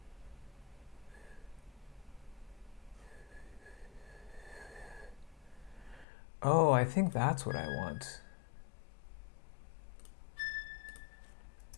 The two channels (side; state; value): right; drops out; at 6.1 s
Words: Oh, I think that's what I want.